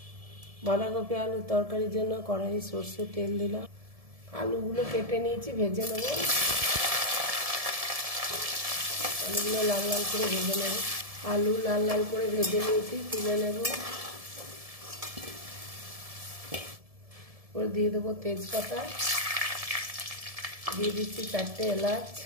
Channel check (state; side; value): late; left; 1.7 ms